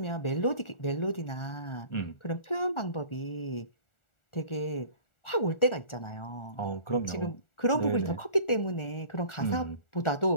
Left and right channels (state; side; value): late; right; 1.4 ms